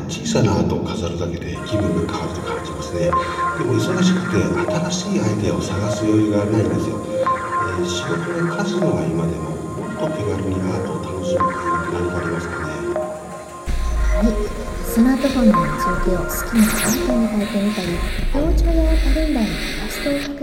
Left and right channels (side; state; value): both; identical; correlation 1.00